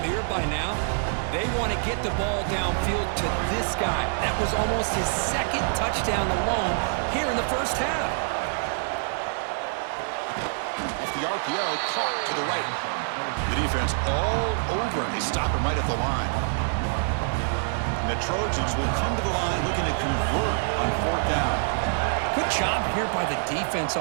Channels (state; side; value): silent; left; digital silence